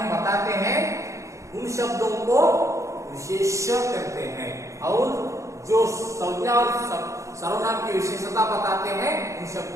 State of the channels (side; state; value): left; late; 0.15 ms